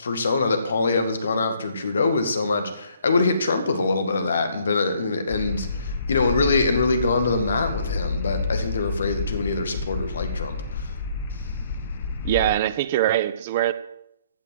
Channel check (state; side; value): inverted; both; correlation -0.64